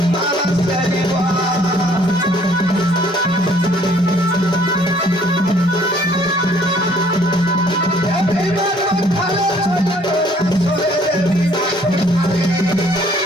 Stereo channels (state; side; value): normal; both; correlation 0.60